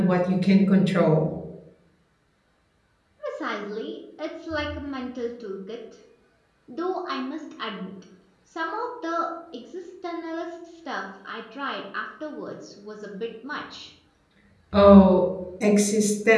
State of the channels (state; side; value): identical; both; correlation 1.00